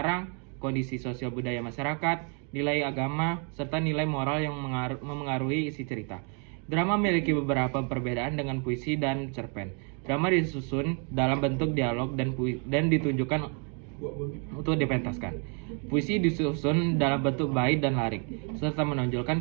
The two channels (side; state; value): left; quieter; 38.5 dB